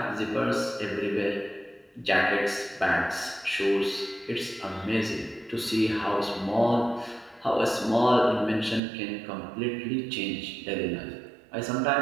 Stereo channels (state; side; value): drops out; left; at 8.8 s